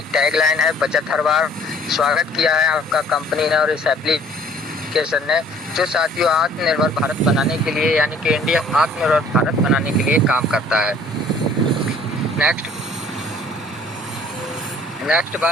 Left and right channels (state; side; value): normal; both; correlation 0.55